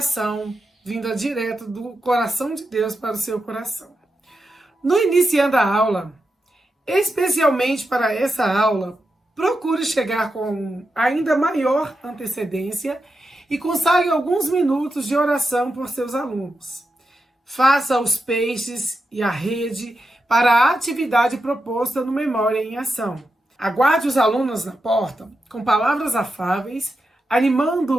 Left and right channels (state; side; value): normal; both; correlation 0.88